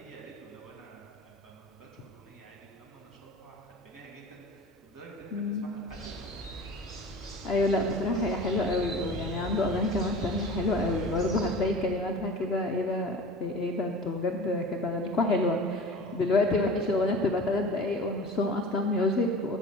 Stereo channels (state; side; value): normal; both; correlation 0.37